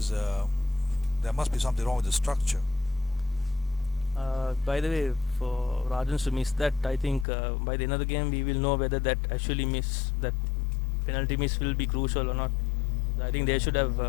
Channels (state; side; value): drops out; right; at 7.2 s